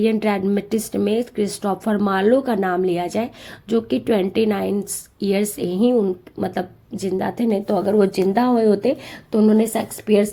ड्रामेटिस्ट में क्रिस्टोफर मार्लो का नाम लिया जाए, जो कि 29 ईयर्स ही मतलब जिंदा थे। नहीं तो अगर वो जिंदा हुए होते तो उन्होंने शेक्सपियर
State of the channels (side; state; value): both; identical; correlation 1.00